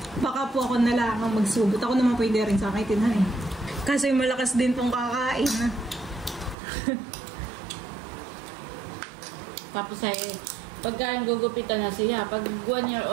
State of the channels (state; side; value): drops out; left; at 6.6 s